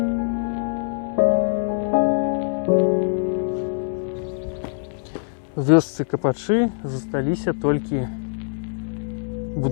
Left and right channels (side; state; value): right; silent; 63 dB below the other